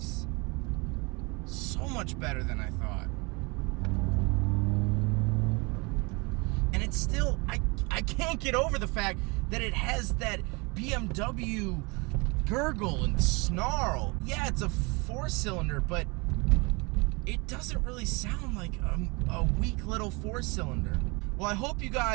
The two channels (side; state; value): left; quieter; 28.1 dB